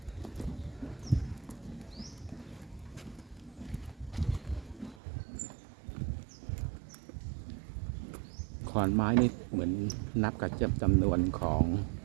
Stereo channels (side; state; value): left; drops out; at 5.0 s